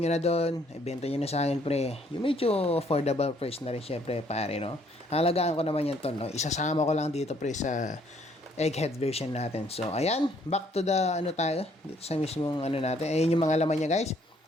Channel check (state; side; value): normal; both; correlation 0.65